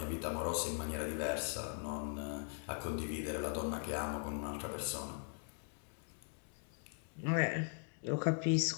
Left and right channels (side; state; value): right; silent; 51 dB below the other